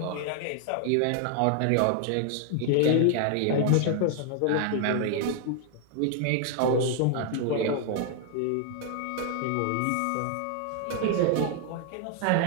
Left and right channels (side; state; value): both; different; correlation 0.00